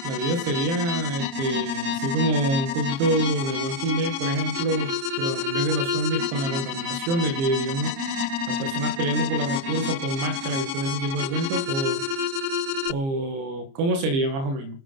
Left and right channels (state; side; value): late; left; 29 ms